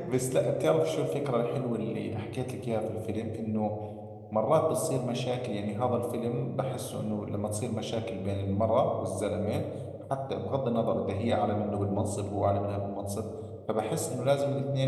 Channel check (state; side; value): identical; both; correlation 1.00